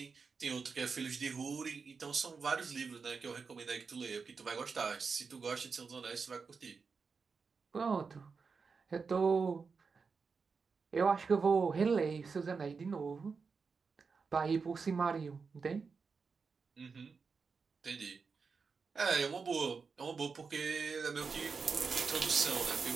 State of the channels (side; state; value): left; quieter; 5.1 dB